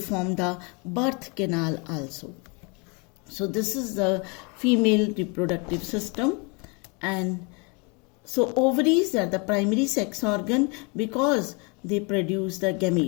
the birth canal also. So this is the female reproductive system. And so ovaries are the primary sex organ because they produce the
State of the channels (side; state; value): right; quieter; 31.8 dB